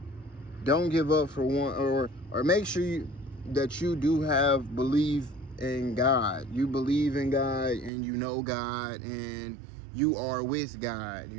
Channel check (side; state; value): left; drops out; at 7.9 s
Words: Don't give up for one, or make sure that you do have belief in God. You believe in God and you know God and you are with God,